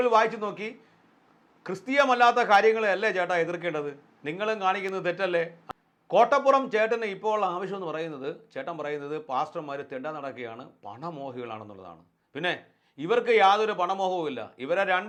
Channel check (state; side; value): identical; both; correlation 1.00